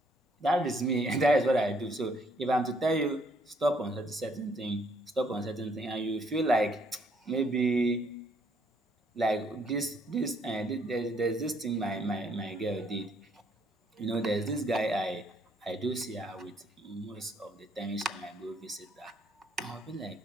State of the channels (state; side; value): normal; both; correlation 0.68